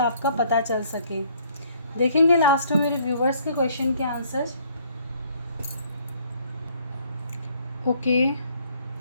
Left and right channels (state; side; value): inverted; both; correlation -0.62